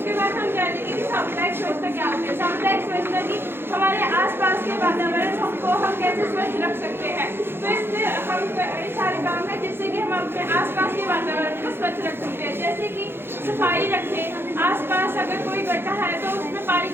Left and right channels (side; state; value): left; late; 0.11 ms